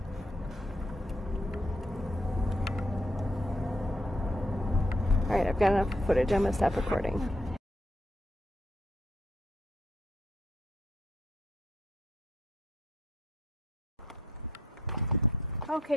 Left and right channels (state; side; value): normal; both; correlation 0.72